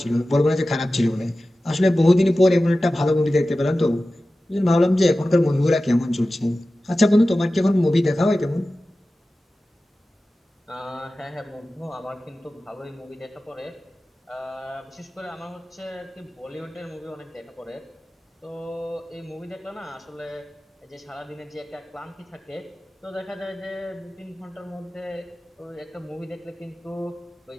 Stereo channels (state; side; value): normal; both; correlation 0.95